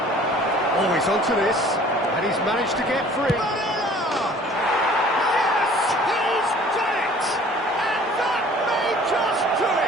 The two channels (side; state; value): both; normal; correlation 0.51